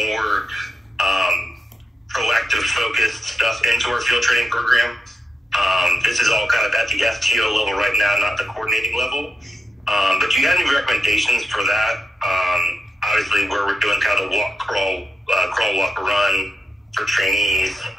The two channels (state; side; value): normal; both; correlation 0.87